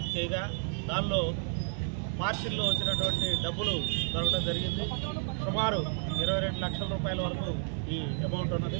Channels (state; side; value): silent; left; 57 dB below the other